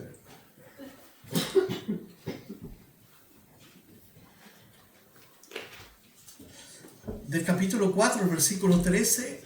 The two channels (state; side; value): identical; both; correlation 1.00